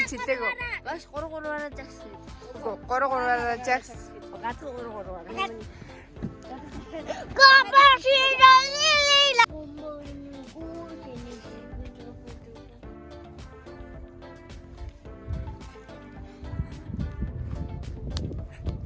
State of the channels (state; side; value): identical; both; correlation 1.00